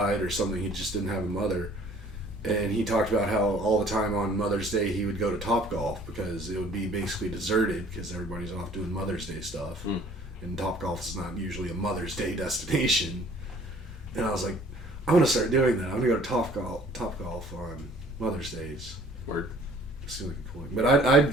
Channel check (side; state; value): both; normal; correlation 0.54